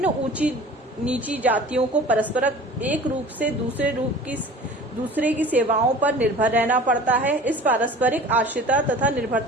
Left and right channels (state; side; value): normal; both; correlation 0.42